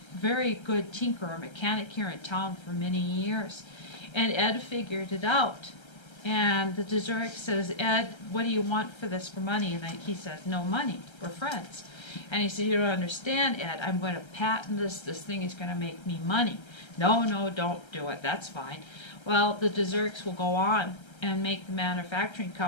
a very good tinkerer, mechanic here in town for many years. And Ed figured it out. And the DeZurik says, Ed, what do you want for this for money? And he says, no money, we're friends. And he said, you don't understand, Ed, I'm going to patent this thing is going to make me money. No, no, don't do it, that's fine. Well, the DeZuriks will go on and make the manufacturing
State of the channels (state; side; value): late; right; 1.3 ms